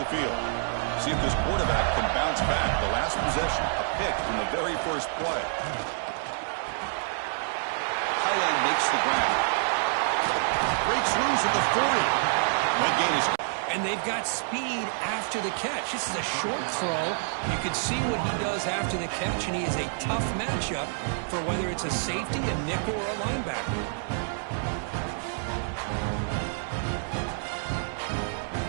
field. See if this quarterback can bounce back. The last possession, a pick from the very first play. Highland makes the ground. Breaks loose at the 40. That gain is... And they've got speed after the catch. This is a short throw. You can see what he does after the catch, and he is a tough matchup for whether it's a safety, a nickel, or a linebacker.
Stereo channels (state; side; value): silent; left; 59 dB below the other